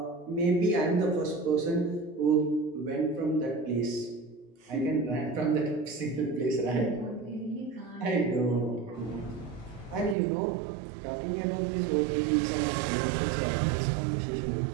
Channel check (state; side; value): drops out; left; at 10.2 s